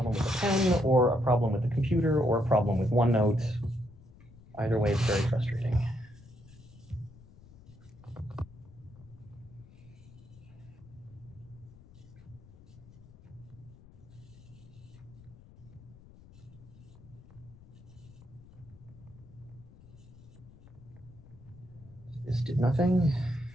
with the pen or a problem with the computer or a problem with OneNote. Either way, it's very frustrating. This did nothing.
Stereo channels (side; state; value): left; noise; rumble, 21 dB below the sound